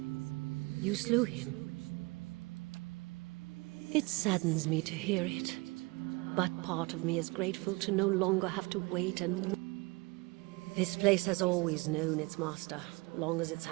You slew him. It saddens me to hear it, but part of me is grateful to no longer have to wait and... This place has always known its master, long as it's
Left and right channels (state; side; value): quieter; left; 26.0 dB